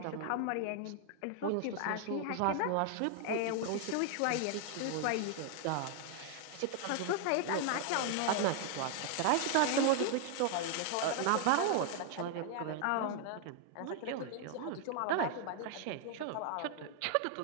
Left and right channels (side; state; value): both; different; correlation 0.00